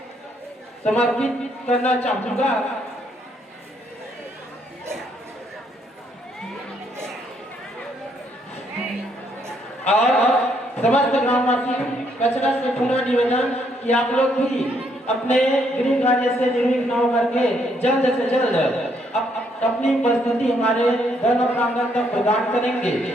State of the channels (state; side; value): normal; both; correlation 0.72